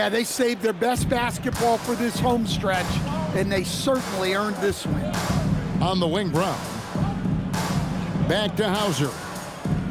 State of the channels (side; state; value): both; identical; correlation 1.00